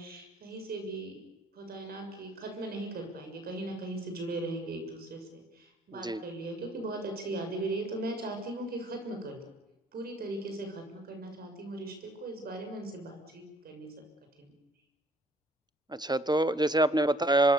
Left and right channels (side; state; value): both; normal; correlation 0.60